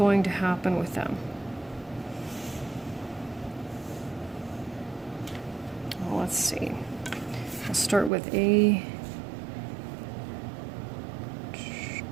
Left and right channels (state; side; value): drops out; left; at 8.1 s